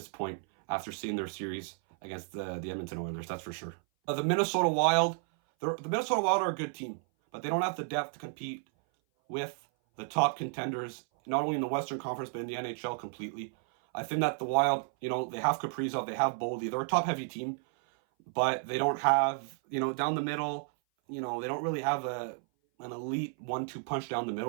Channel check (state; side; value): silent; left; 56 dB below the other